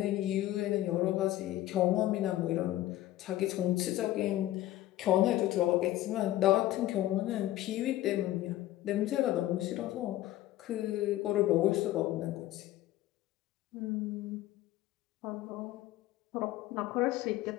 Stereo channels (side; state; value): right; quieter; 15.0 dB